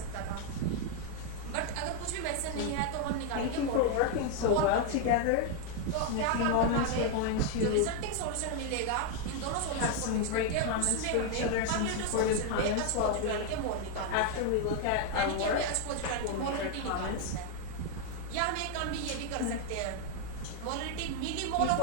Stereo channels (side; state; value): both; different; correlation 0.01